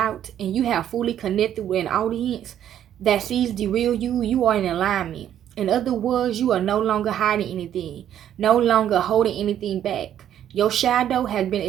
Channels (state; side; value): quieter; left; 10.5 dB